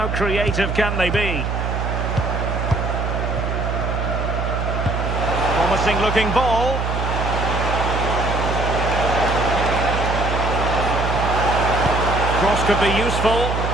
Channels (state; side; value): noise; right; hum, 1 dB below the sound